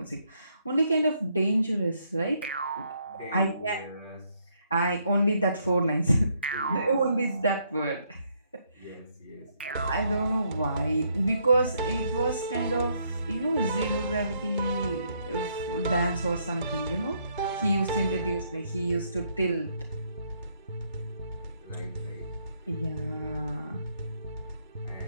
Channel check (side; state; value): both; inverted; correlation -0.73